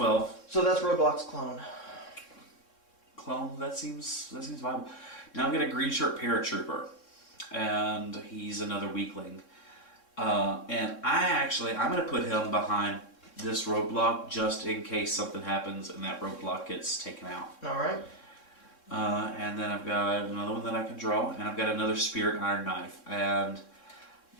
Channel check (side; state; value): right; late; 3.6 ms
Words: So that's Roadblock's clone. Clone. That seems viable. Now I've got a Green Shirt Paratrooper, and he's another weakling. And I'm going to put him behind this roadblock just in case something happens and that roadblock gets taken out. All right. And then I've got another one that I can draw, and I've got another Spirit Iron Knife. And,